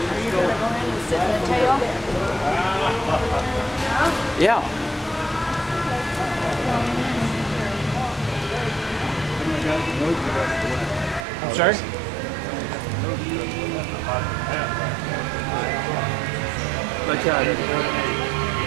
you going to go in and sit in the tail? Yeah. I'm sorry? Let's try it.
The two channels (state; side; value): drops out; left; at 11.2 s